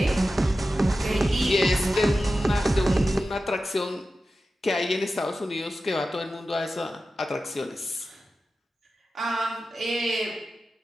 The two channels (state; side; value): normal; both; correlation 0.93